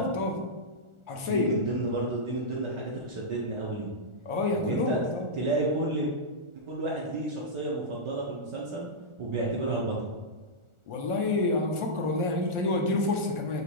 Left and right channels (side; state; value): left; late; 1.4 ms